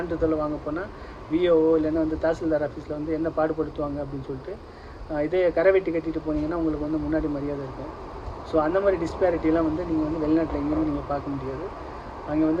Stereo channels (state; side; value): identical; both; correlation 1.00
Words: வாங்க போனால் விஓஓ இல்லைன்னா வந்து தாசில்தார் ஆஃபீஸில் வந்து என்ன பாடுபடுத்துவாங்க அப்படின்னு சொல்லிட்டு. இதே கரை வெட்டி கட்டிட்டு போனீங்கன்னா உங்களுக்கு வந்து முன்னாடி மரியாதை இருக்கும். ஸோ அந்த மாதிரி டிஸ்பேரிட்டிலாம் வந்து நீங்கள் வந்து வெளிநாட்டில் எங்கேயுமே நீங்கள் பார்க்க முடியாது. அங்கே